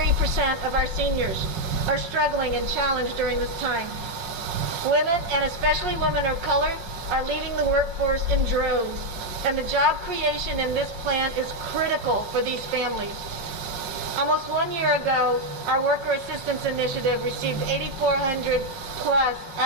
of our seniors are struggling and challenged during this time. Women, and especially women of color, are leaving the workforce in droves, and the job creation in this plan is critical for these families. Almost 1 year ago, our Worker Assistance Initiative received 8,400 plus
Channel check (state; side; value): late; left; 5.5 ms